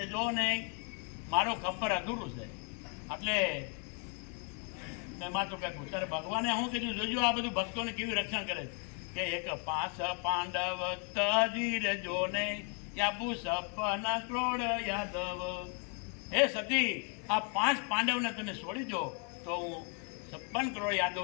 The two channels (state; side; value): quieter; right; 39.4 dB